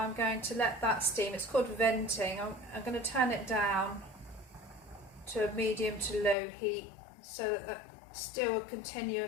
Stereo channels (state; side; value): drops out; right; at 6.4 s